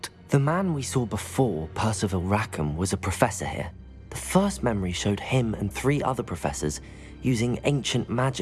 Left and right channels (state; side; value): identical; both; correlation 1.00